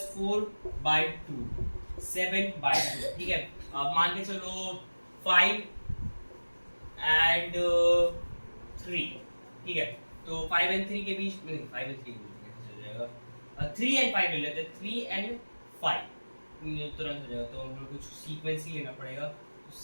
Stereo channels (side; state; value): both; inverted; correlation -1.00